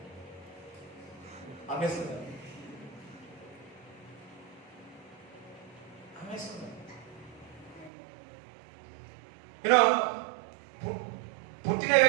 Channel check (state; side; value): drops out; left; at 7.9 s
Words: అమ్మేస్తున్నారు. యూనో పుట్టిన